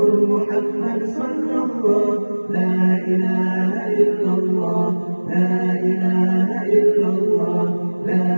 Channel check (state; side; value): inverted; both; correlation -1.00